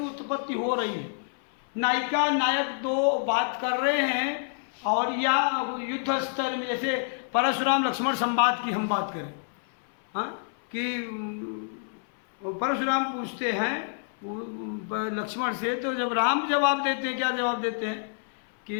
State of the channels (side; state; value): right; silent; 60 dB below the other